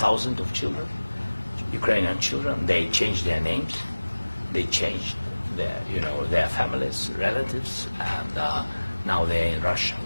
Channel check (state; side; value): inverted; both; correlation -1.00